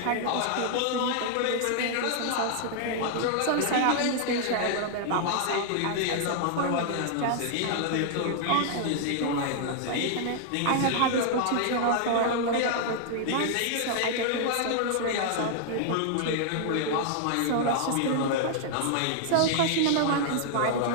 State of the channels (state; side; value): different; both; correlation -0.01